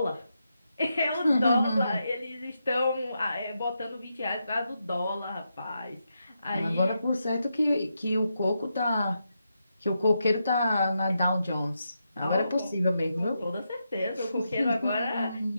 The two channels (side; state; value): both; inverted; correlation -0.84